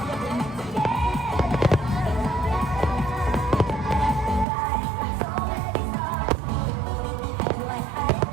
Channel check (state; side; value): drops out; left; at 4.5 s